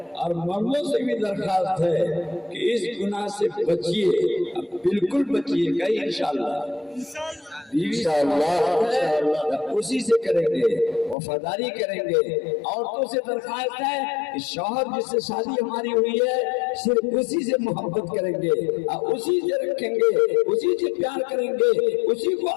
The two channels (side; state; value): right; drops out; at 11.2 s